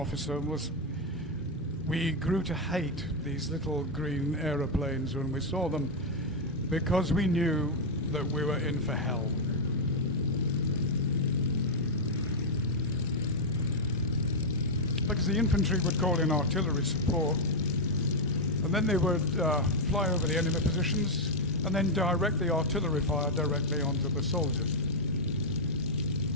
was, "We grew to hate these little green aeroplanes when we saw them because we knew that we were in for hell." Because the infantry would call in artillery support, and then they would fly over the enemy positions and then direct the artillery fire directly onto the soldiers.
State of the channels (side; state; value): both; normal; correlation -0.01